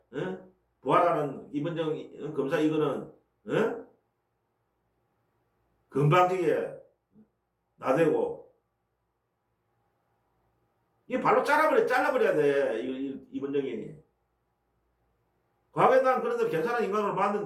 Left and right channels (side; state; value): both; identical; correlation 1.00